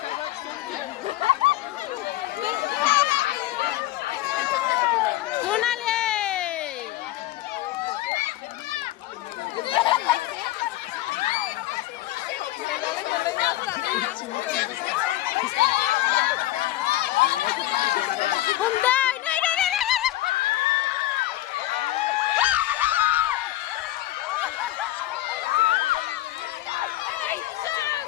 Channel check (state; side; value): quieter; right; 15.6 dB